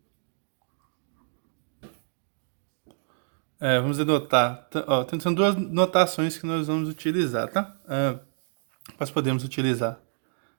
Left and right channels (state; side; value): silent; left; digital silence